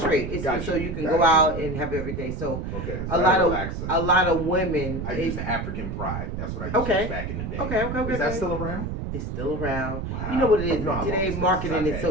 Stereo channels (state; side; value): noise; right; rumble, 5 dB below the sound